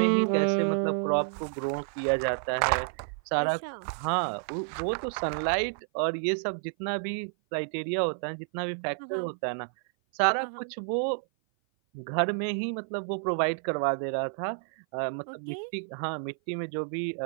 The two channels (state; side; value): silent; left; 56 dB below the other